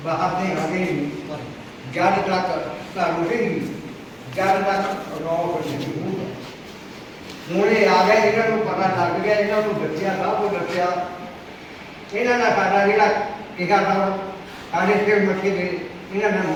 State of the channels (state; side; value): identical; both; correlation 1.00